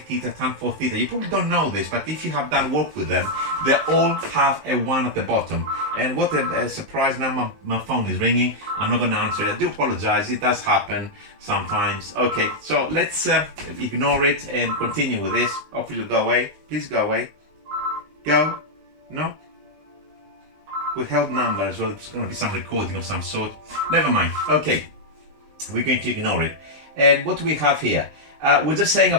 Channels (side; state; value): left; late; 20 ms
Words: tan 4 theta, you probably don't know this, but if you have done work with them, they all have a 1 at the bottom. And what a surprise, now my phone is ringing. I'm not going to answer it. I do apologize, it does happen sometimes. Okay, so let's ignore it and continue with this. Hopefully you'll go away. Please go away. Go. No? Withheld number as well. It's going to be some recording of some sort. Never mind. Okay, we're going to ignore it. And what do we have here? We're just saying